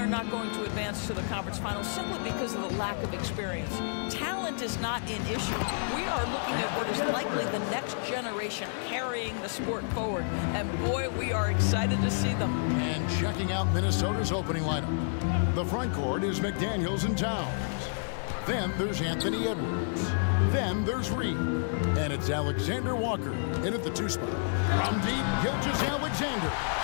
not going to advance to the conference finals simply because of the lack of experience. Talent is not an issue. We are looking at what is likely the next generation carrying the sport forward. And boy, we are excited to see them. And checking out Minnesota's opening lineup. The front court is McDaniels and Towns. Then there's Anthony Edwards. Then there's Reed. And it's Alexander Walker in at the 2 spot. From deep, Gilgeous-Alexander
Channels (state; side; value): silent; right; 58 dB below the other